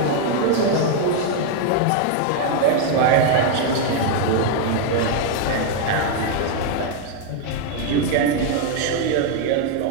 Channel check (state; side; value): different; both; correlation 0.00